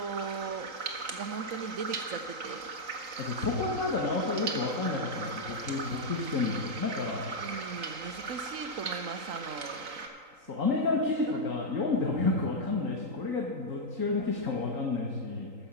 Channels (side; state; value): left; late; 3.8 ms